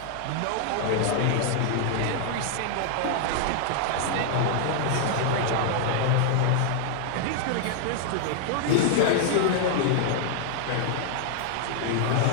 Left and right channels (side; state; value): both; different; correlation -0.01